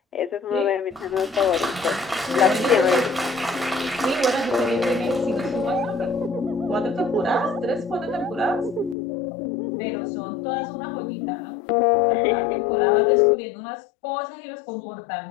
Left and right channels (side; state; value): right; drops out; at 9.0 s